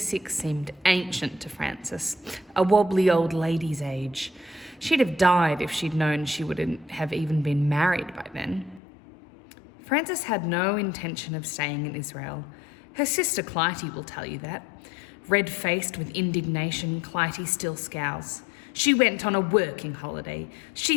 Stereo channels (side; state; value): right; drops out; at 8.8 s